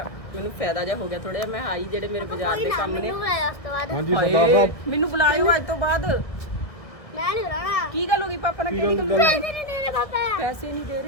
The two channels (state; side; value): late; right; 1.7 ms